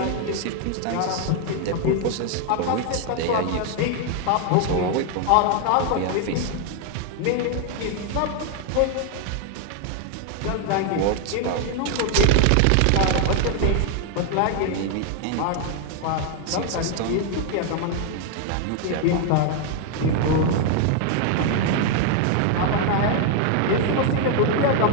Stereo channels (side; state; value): both; different; correlation 0.01